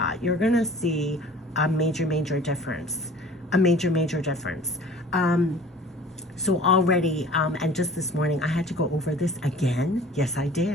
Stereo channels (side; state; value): both; normal; correlation 0.46